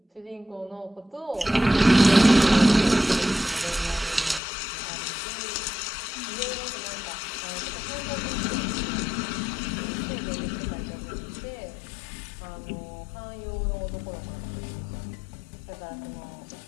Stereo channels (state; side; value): drops out; right; at 4.4 s